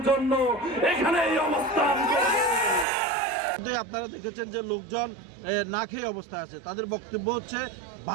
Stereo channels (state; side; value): drops out; left; at 2.9 s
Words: জন্য এখানে এই অবস্থান করব। আপনারা দেখেছেন যে লোকজন না খেয়ে অবস্থায় আছে, তাদের বক্তব্য হচ্ছে